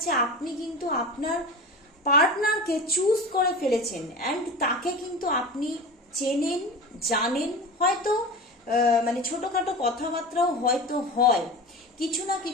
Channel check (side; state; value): both; normal; correlation 0.31